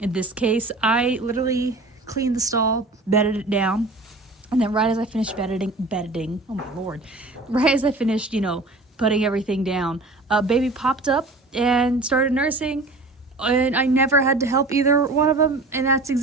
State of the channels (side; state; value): left; quieter; 3.1 dB